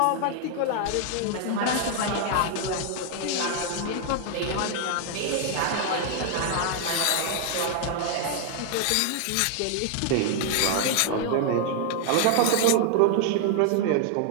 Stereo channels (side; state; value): both; different; correlation 0.00